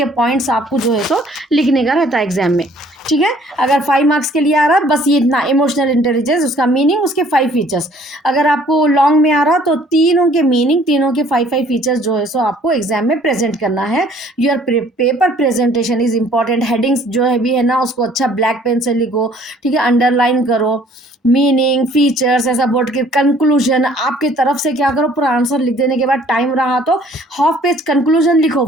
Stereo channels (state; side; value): normal; both; correlation 0.57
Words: पॉइंट्स आपको जो है तो लिखने का रहता है एग्जाम में, ठीक है। अगर 5 मार्क्स के लिए आ रहा है बस ये इतना, इमोशनल इंटेलिजेंस, उसका मीनिंग, उसके 5 फीचर्स। अगर आपको लॉन्ग में आ रहा तो तीनों के मीनिंग, तीनों के 5 फीचर्स जो है सो आपको एग्जाम में प्रेजेंट करना है। Your paper presentation is important. Headings जो है भी है ना, उसको अच्छा ब्लैक पेन से लिखो, ठीक है, अंडरलाइन करो, मीनिंग, फीचर्स, ऐसा बोर्ड के कंक्लूजन, आपकी तरफ से क्या करो, पूरा आंसर लिख देने के बाद टाइम रहा तो हाफ पेज कंक्लूजन लिखो,